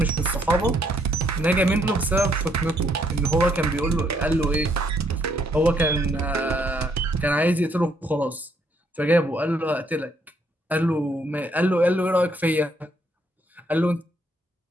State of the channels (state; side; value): normal; both; correlation 0.70